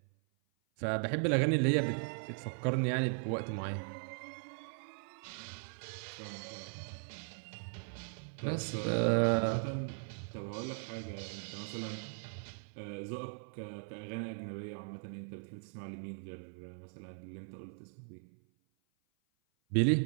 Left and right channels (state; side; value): silent; left; 52 dB below the other